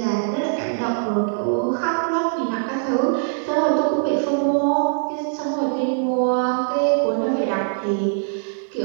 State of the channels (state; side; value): silent; left; digital silence